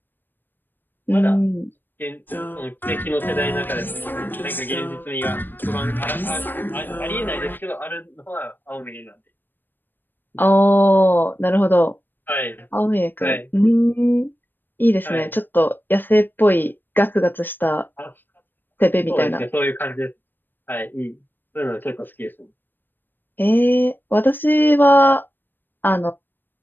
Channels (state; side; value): late; right; 0.093 ms